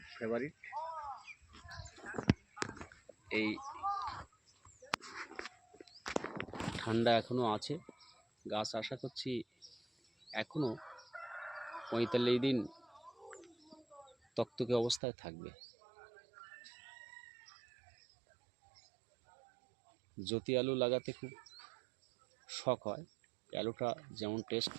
ফেভারিট। এই ঠান্ডা এখনো আছে, গাছ আশা করছি এখনো 45 দিন তকতকে অবস্থায় থাকবে। জ্যোতি আলু লাগাতে খুব শখ হয়। আলুটা যেমন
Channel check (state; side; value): drops out; left; at 15.0 s